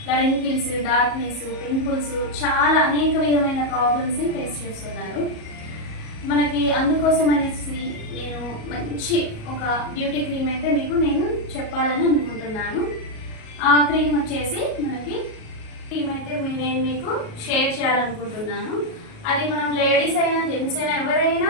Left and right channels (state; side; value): late; right; 37 ms